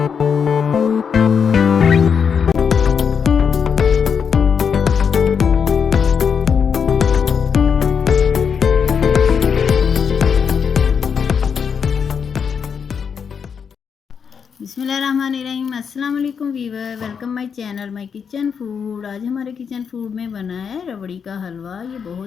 अस्सलाम वालेकुम viewer, welcome my channel my kitchen food. आज हमारे किचन फूड में बना है रबड़ी का हलवा। ये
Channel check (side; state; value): right; quieter; 6.7 dB